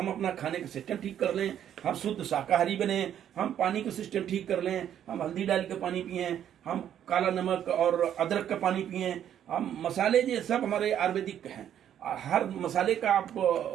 अपना खाने का सिस्टम ठीक कर लें, हम शुद्ध शाकाहारी बने, हम पानी का सिस्टम ठीक कर लें, हम हल्दी डाल के पानी पिएं, हम काला नमक और अदरक का पानी पिएं, हम मसाले ये सब हमारे आयुर्वेदिक हैं। हर मसाले का आप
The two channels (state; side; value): quieter; left; 10.1 dB